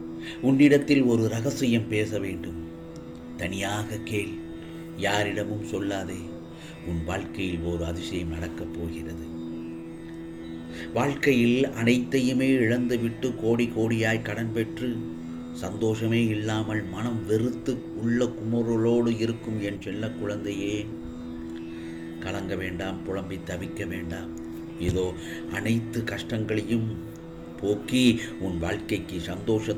உன்னிடத்தில் ஒரு ரகசியம் பேச வேண்டும். தனியாக கேள், யாரிடமும் சொல்லாதே. உன் வாழ்க்கையில் ஒரு அதிசயம் நடக்கப் போகிறது. வாழ்க்கையில் அனைத்தையுமே இழந்துவிட்டு கோடி கோடியாய் கடன் பெற்று சந்தோஷமே இல்லாமல் மனம் வெறுத்து உள்ள குமுறலோடு இருக்கும் என் செல்ல குழந்தையே, கலங்க வேண்டாம், புலம்பி தவிக்க வேண்டாம். இதோ அனைத்து கஷ்டங்களையும் போக்கி உன் வாழ்க்கைக்கு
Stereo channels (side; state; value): both; identical; correlation 1.00